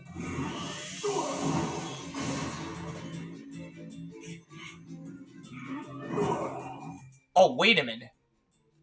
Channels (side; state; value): both; identical; correlation 1.00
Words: Oh, wait a minute.